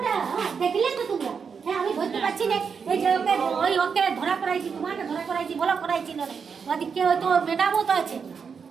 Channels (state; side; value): quieter; left; 6.1 dB